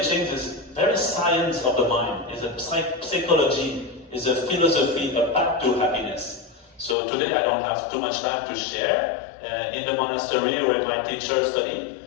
is very science of the mind, is a psychology, is a philosophy, a path to happiness. So today I don't have too much time to share. In the monastery where my teachers study,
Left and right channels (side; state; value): right; drops out; at 7.0 s